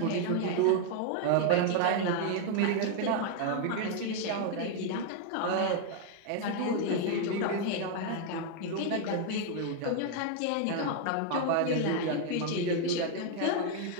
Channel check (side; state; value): both; different; correlation 0.00